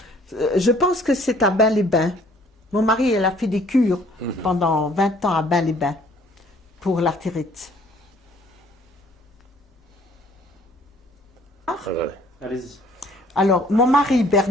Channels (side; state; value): both; normal; correlation 0.58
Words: Je pense que c'est à Bain-les-Bains. Mon mari, elle a fait des cures pendant 20 ans à Bain-les-Bains pour l'artérite. Allez-y. Alors, mon mari